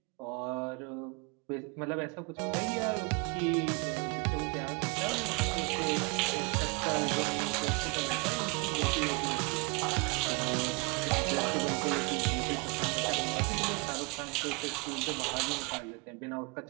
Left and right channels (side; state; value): left; quieter; 28.7 dB